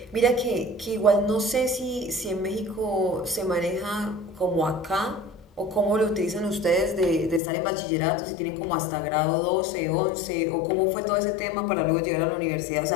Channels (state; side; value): drops out; right; at 7.4 s